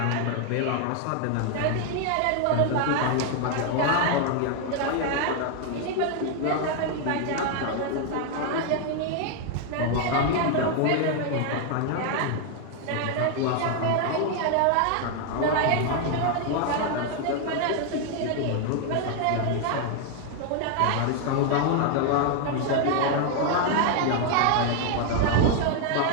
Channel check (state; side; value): different; both; correlation 0.00